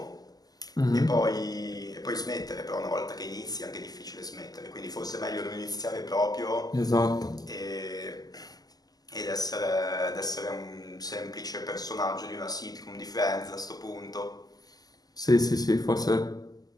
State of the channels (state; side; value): late; right; 0.18 ms